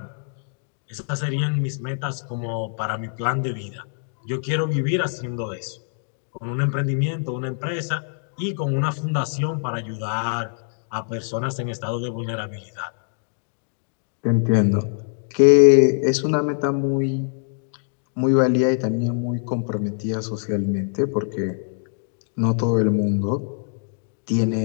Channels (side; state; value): right; silent; digital silence